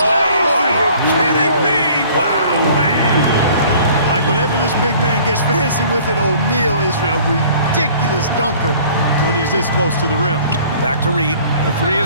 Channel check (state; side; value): inverted; both; correlation -0.52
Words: you kidding me? Wow, man. Like whenever this big man gets fancy with it, O'Neal is a ridiculous dunker when he's this close to the rim. Back to Reed. The three